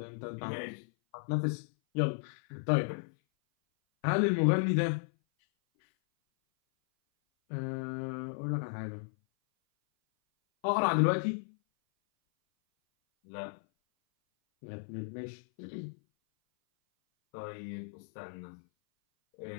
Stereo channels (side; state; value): right; silent; 55 dB below the other